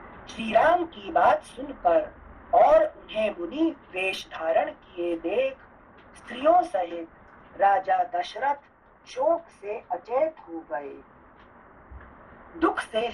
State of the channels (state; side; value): identical; both; correlation 1.00